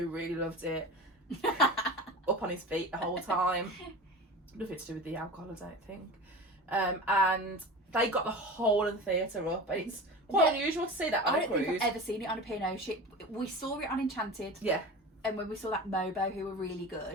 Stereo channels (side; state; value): both; normal; correlation 0.32